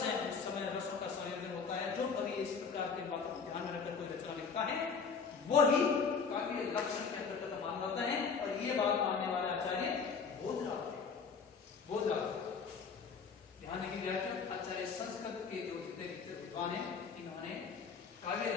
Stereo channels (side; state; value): right; quieter; 5.6 dB